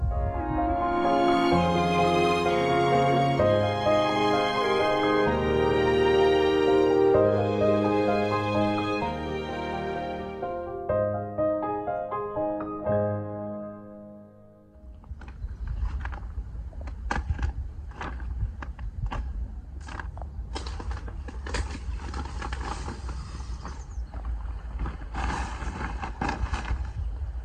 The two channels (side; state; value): both; identical; correlation 1.00